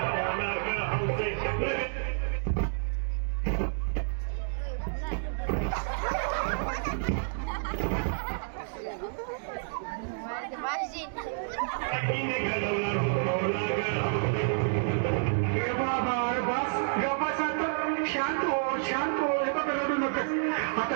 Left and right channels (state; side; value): silent; left; digital silence